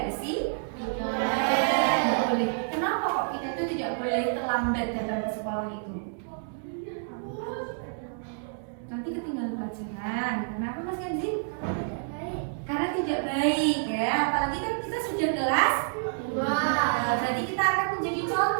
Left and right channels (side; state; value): left; silent; digital silence